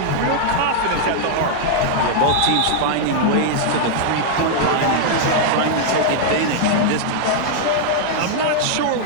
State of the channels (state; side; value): different; both; correlation -0.01